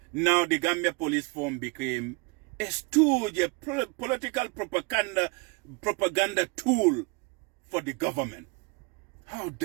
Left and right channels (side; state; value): left; quieter; 28.7 dB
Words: now the Gambia Police Force became a stooge, a political propaganda tool for the government. How